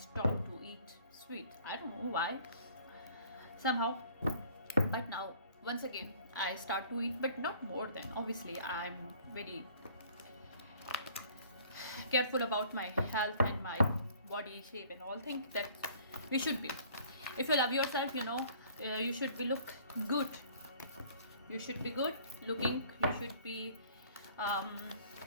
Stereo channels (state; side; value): inverted; both; correlation -0.54